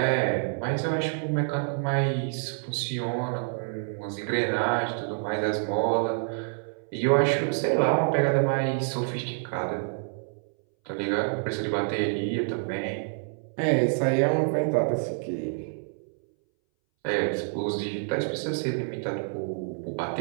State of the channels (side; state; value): left; silent; 60 dB below the other